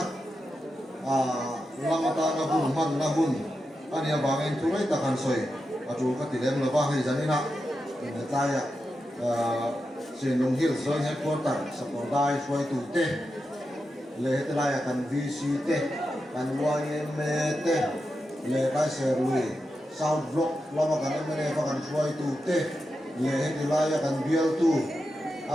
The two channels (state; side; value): normal; both; correlation 0.89